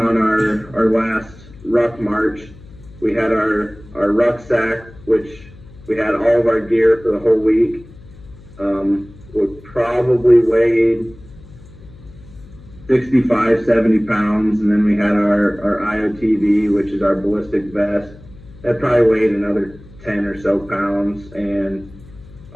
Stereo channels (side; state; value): left; noise; hum, 21 dB below the sound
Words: our last ruck march. We had our rucksack, which we had all of our gear for the whole week. Would probably weighed 65, 70 pounds, and then we had our IOTV, which is our ballistic vest. That probably weighed another 10 or so pounds, and